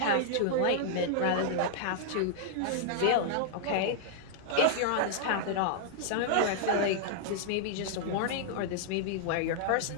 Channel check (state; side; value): different; both; correlation -0.01